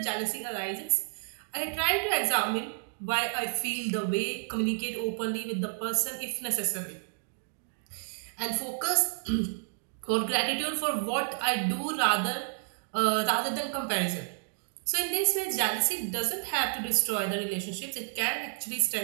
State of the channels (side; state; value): left; silent; digital silence